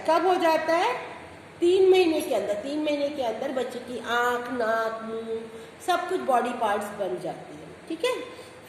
कब हो जाता है? 3 महीने के अंदर। 3 महीने के अंदर बच्चे की आँख, नाक, मुंह सब कुछ बॉडी पार्ट्स बन जाते हैं। ठीक है।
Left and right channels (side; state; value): both; identical; correlation 1.00